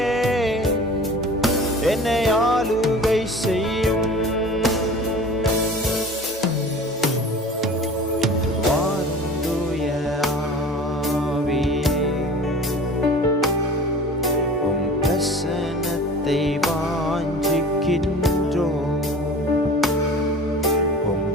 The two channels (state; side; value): normal; both; correlation 0.41